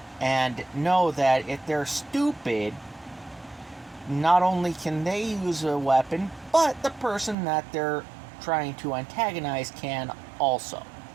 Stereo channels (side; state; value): left; drops out; at 7.4 s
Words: and know that if they're stupid, not only can they use a weapon, but the person that they're trying to antagonize can also.